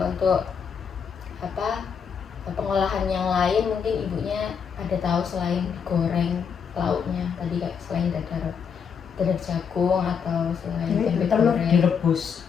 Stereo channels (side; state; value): right; quieter; 6.7 dB